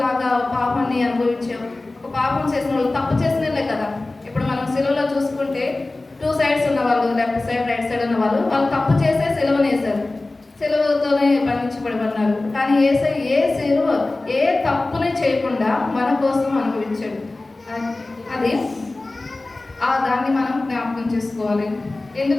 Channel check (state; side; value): quieter; right; 3.0 dB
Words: పాపాన్ని అనుభవించే ఒక పాపం చేసిన వాళ్ళు, తప్పు చేసినలే కదా. ఇప్పుడు మనం సిలువలో చూసుకుంటే 2 sides ఉన్న వాళ్ళు, లెఫ్ట్ సైడ్ రైట్ సైడ్ ఉన్న వాళ్ళు తప్పు చేసే సిలువనేసారు. సిలువతోనే బంధించబడమన్నారు. కానీ ఏ సిలువ ఏ తప్పుని చేయకుండా మన కోసం అనుభవించాడు. అది దాన్ని మనం జ్ఞాపకం చేసుకోవాలి.